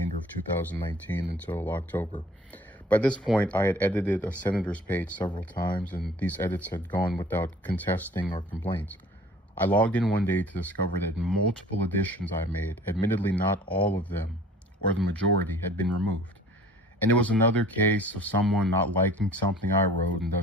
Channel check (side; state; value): both; normal; correlation 0.49